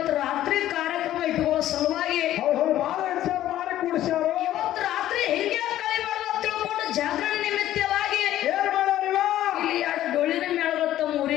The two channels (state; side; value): quieter; right; 13.2 dB